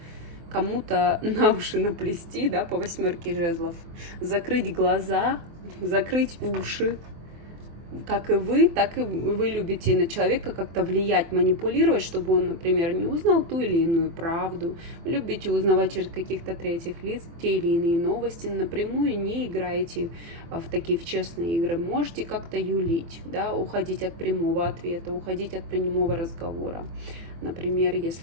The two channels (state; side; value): late; left; 24 ms